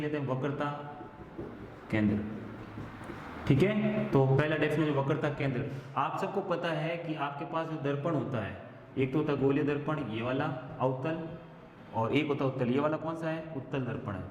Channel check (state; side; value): identical; both; correlation 1.00